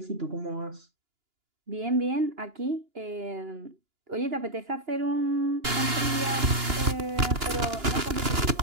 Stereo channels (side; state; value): left; late; 2.9 ms